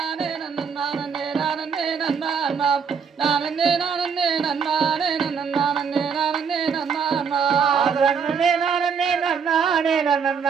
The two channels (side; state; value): left; quieter; 6.3 dB